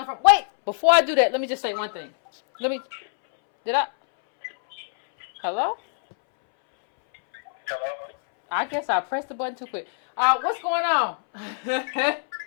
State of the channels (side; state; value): right; silent; 63 dB below the other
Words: from? Wait, before I do that, let me just say one thing. Hello? Hello? I guess I pressed the button too quick. What's going on?